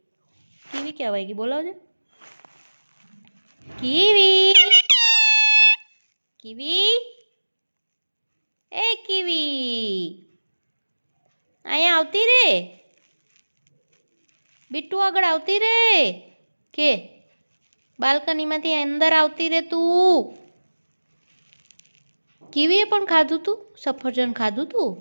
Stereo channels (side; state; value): both; inverted; correlation -1.00